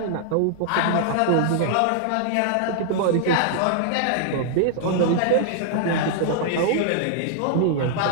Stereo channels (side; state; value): both; different; correlation -0.01